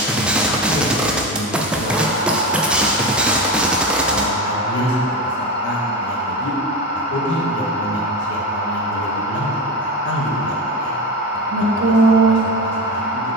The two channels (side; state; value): both; normal; correlation 0.22